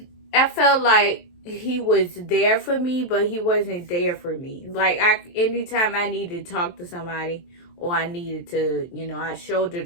I felt like he was there for me, but he wasn't there for me. Like, anytime I needed to talk to somebody, or I needed to, I shouldered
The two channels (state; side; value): late; right; 23 ms